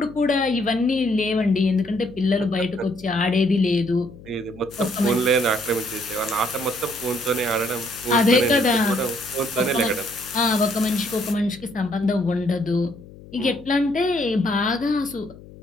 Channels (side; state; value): left; noise; hum, 19 dB below the sound